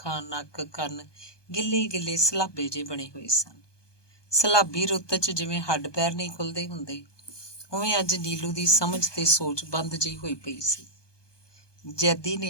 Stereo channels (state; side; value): late; right; 1.2 ms